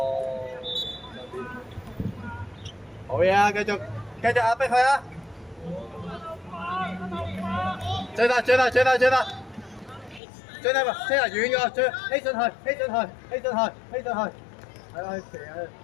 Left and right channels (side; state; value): right; drops out; at 10.2 s